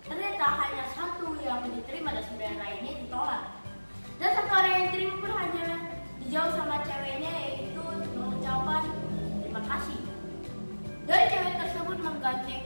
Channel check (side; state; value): both; inverted; correlation -1.00